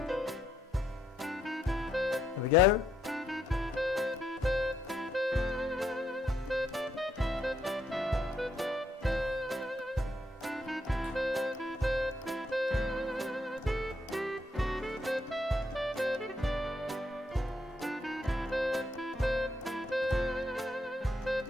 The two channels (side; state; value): both; normal; correlation 0.75